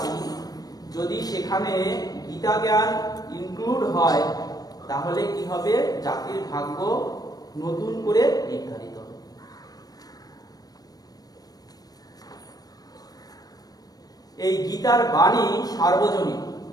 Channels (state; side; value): late; right; 0.18 ms